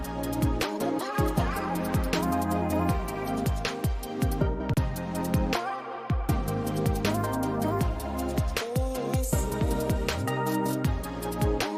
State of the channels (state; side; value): identical; both; correlation 1.00